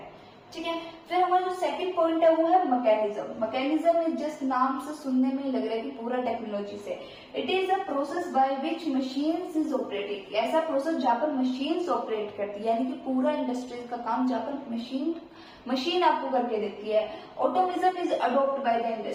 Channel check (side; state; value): both; identical; correlation 1.00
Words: ठीक है, फिर हमारा जो सेकंड पॉइंट है वो है मैकेनिज्म। मैकेनिज्म इज जस्ट, नाम से सुनने में ही लग रहा है कि पूरा टेक्नोलॉजी से। It is a process by which machines is operating, ऐसा प्रोसेस जहां पर मशीन्स ऑपरेट करती है, यानी कि पूरा इंडस्ट्रीज का काम जहां पर मशीन आपको करके देती है। Automation is adopt by the